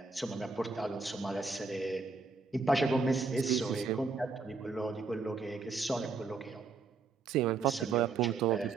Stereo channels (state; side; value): quieter; left; 4.3 dB